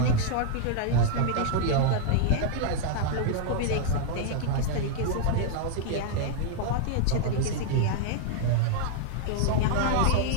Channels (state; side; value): different; both; correlation -0.01